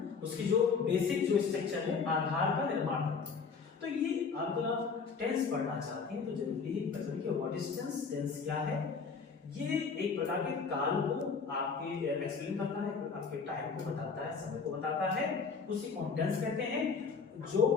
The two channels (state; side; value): quieter; right; 5.4 dB